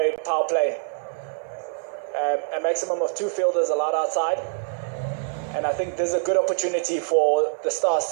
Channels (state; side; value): silent; left; digital silence